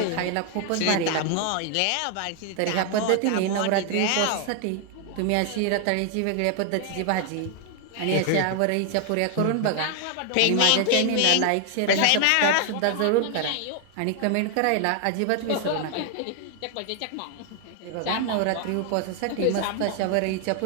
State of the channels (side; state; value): both; different; correlation 0.00